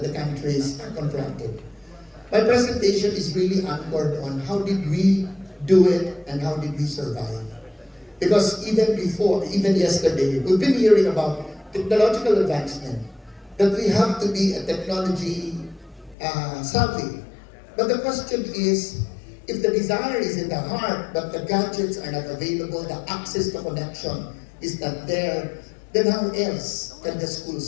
the countries are confronted. My presentation is really anchored on how did we do it and how did we survive. Because even before, even yesterday, we've been hearing about technological advancement, that we have to be a technology savvy. But the question is, if the desire is in the heart, but the gadgets are not available, the access to connection is not there, then how else can the school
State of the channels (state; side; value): drops out; right; at 16.2 s